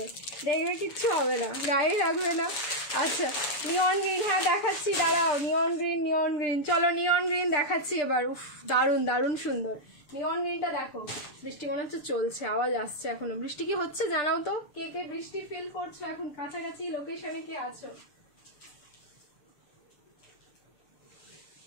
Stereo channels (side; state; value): right; late; 6.8 ms